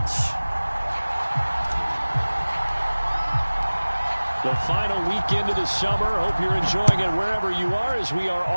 The final weekend of the summer. Hope you're enjoying it wherever you are as we are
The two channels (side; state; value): both; inverted; correlation -1.00